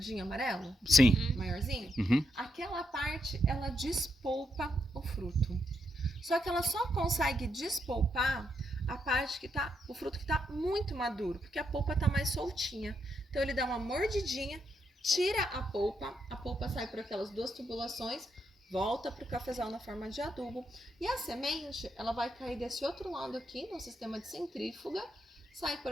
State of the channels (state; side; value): normal; both; correlation 0.79